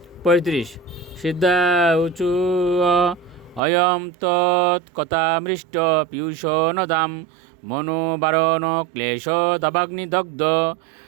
35। সিদ্ধা উচু অয়ম তৎকথামৃষ্ট পীয়ূষ নদাম মনোবারণ ক্লেশ দাবাগ্নিদগ্ধ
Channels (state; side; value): drops out; left; at 3.6 s